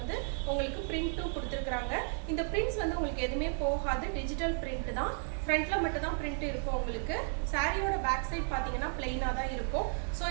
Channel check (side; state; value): left; silent; 55 dB below the other